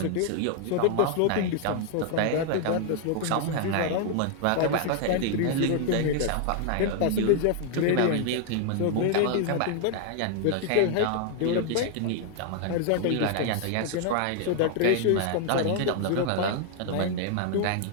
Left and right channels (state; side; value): different; both; correlation 0.00